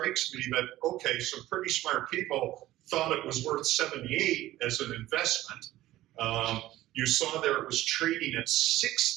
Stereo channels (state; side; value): quieter; left; 15.5 dB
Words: me that, okay, some pretty smart people thought it was worth 78 as an investment. You saw there it was trading at